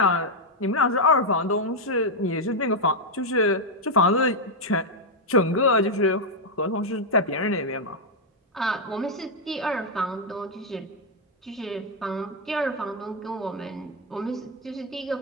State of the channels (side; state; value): both; normal; correlation 0.00